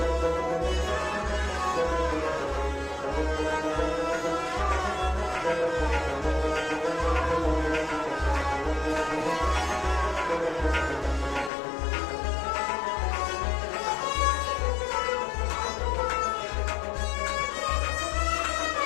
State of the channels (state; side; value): drops out; right; at 11.5 s